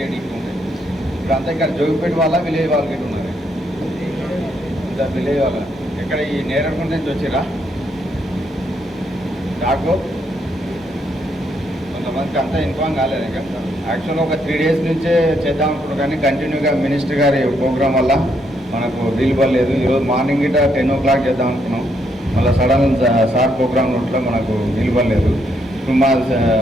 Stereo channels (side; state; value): both; normal; correlation 0.75